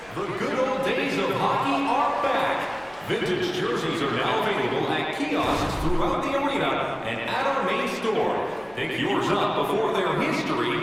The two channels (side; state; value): left; noise; hum, 27 dB below the sound